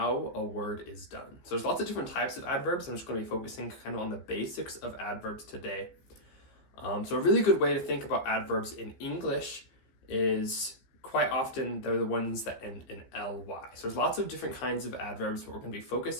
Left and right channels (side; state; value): right; late; 15 ms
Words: a word is done. So there's lots of different types of adverbs. I'm just going to be focusing kind of on the basics of adverbs today. So a really good way to think about adverbs in English is quite often they're the ones that end in ly. So there's lots of different kinds of adverbs, but we're going to be